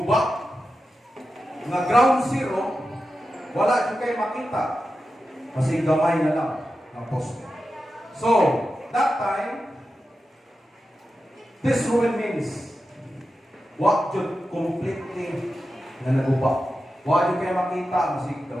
nga ground zero, wala yung kayo makita kasi gamay na lang ang poste. So, that time, this ruin means wala yung completely na naguba. Wala yung kayo makita kasi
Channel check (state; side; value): normal; both; correlation 0.91